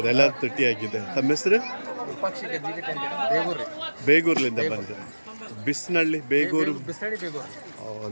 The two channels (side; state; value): both; inverted; correlation -1.00